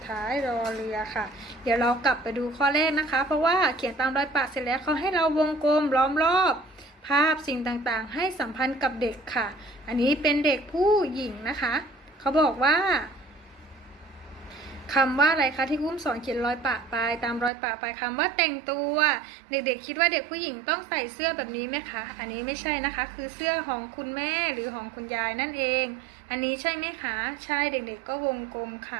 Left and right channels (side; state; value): left; drops out; at 17.5 s